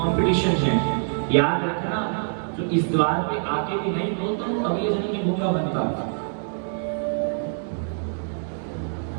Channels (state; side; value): silent; left; digital silence